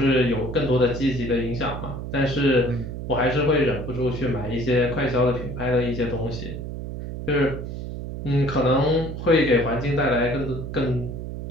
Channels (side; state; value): right; noise; hum, 7 dB below the sound